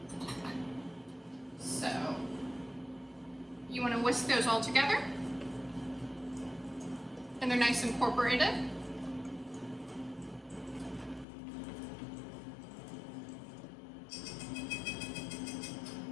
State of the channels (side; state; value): right; drops out; at 11.2 s